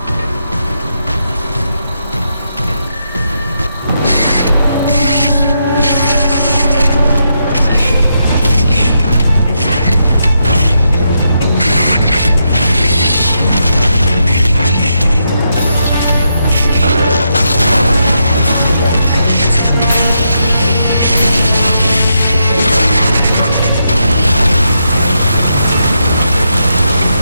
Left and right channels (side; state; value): both; inverted; correlation -0.82